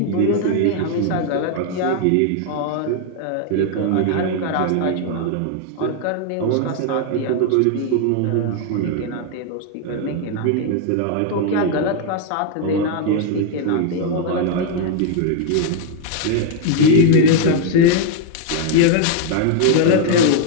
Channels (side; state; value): both; different; correlation 0.00